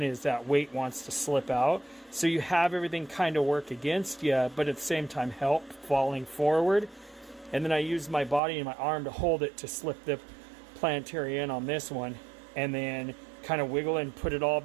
is, that weight wants to slip out. So you have everything kind of work against you, but at the same time help falling forward. And then I use my body and my arm to hold it to slip the planetary in on this one, and then kind of wiggle and put it all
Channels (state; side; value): drops out; left; at 8.4 s